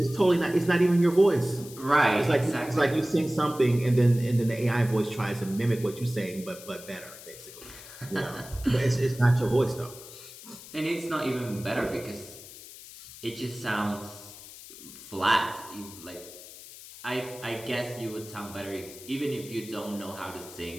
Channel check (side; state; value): left; noise; hiss, 16 dB below the sound